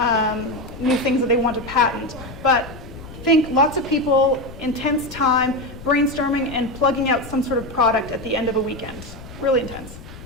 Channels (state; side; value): noise; left; rumble, 15 dB below the sound